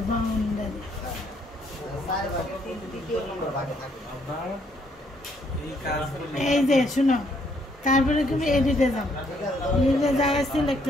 বাউন্ডারি আমরা এই কাজগুলো এই যে শুনো, তারপরে তুমি এডিটে যাও, এডিটে যায়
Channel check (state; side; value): normal; both; correlation 0.69